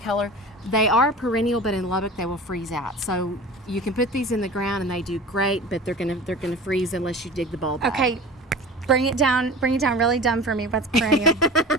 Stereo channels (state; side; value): normal; both; correlation 0.36